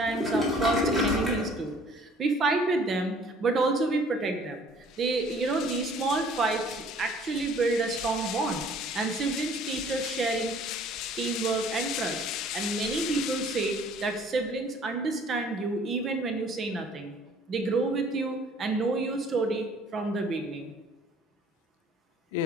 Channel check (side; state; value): both; normal; correlation 0.55